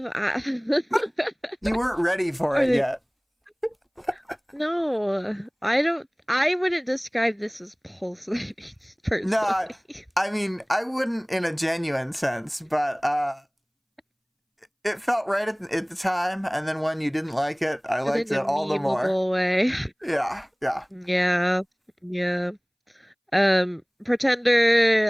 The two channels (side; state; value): both; identical; correlation 1.00